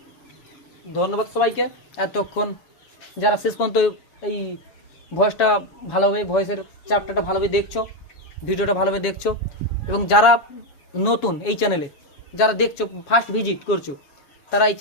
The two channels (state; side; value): late; right; 7.2 ms